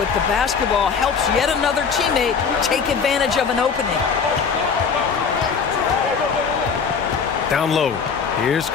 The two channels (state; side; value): quieter; right; 6.0 dB